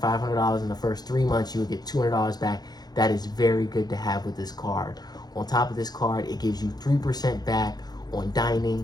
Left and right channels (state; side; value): late; right; 0.19 ms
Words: $500 in the first 3 months, you will get $200 back. That is very good to have with this card. On top of this card, it gives you 3% back on